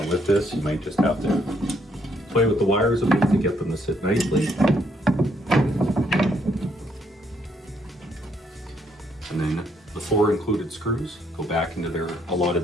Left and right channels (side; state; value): both; normal; correlation 0.71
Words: with this, you might just have to play with the wires a bit to get them to sit nicely. And then the 4 included screws go back into their